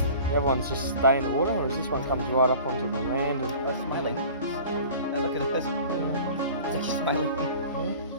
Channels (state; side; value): inverted; both; correlation -0.44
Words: the other ones just stay in the water, whereas this one comes right up onto the land and They're smiling. Hey, look at this. They're just smiling.